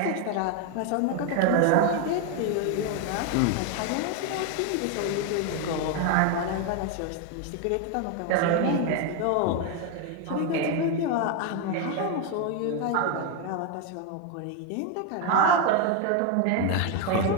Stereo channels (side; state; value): both; different; correlation 0.01